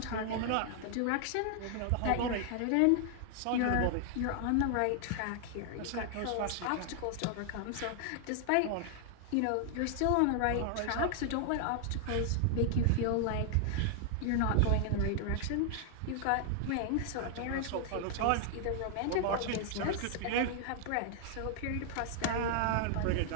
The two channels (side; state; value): both; different; correlation 0.00